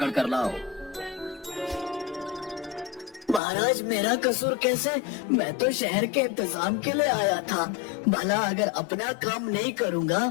कर लाओ। महाराज, मेरा कसूर कैसे? मैं तो शहर के इंतजाम के लिए आया था। भला अगर अपना काम नहीं करूंगा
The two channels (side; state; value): right; drops out; at 3.4 s